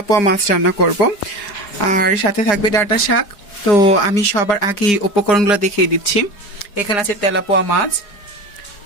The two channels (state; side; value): late; right; 4.9 ms